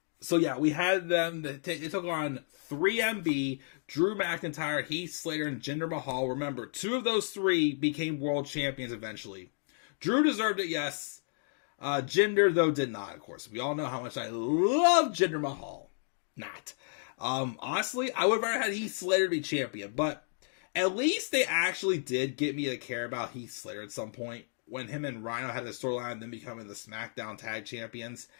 So, yeah, we had them. They took on 3MB, Drew McIntyre, Heath Slater, and Jinder Mahal. Remember, 2 of those 3 became world champions eventually. Drew deserved it, yes. Jinder, though, did not, of course. We all know how much I love Jinder Mahal. Not. Honestly, I would have rather had Heath Slater be champion, but at least they actually did get me to care about Heath Slater at some point. When him and Rhino had the storyline, then becoming the SmackDown Tag Champions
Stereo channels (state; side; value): silent; right; digital silence